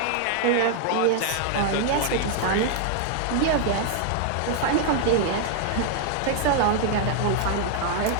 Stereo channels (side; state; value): both; different; correlation 0.00